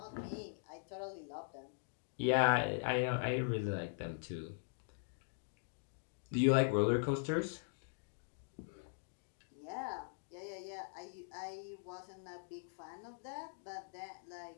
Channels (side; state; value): right; silent; digital silence